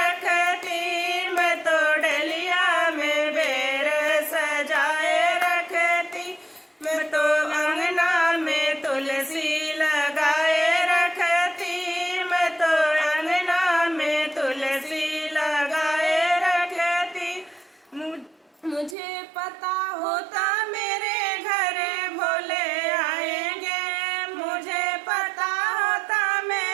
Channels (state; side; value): drops out; left; at 18.9 s